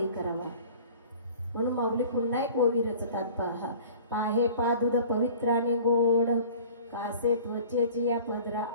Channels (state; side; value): inverted; both; correlation -0.45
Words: करावा. म्हणून माऊली पुन्हा एक ओवी रचतात पहा पाहे पा दूध पवित्राने गोड कासे त्वचेची या पदरा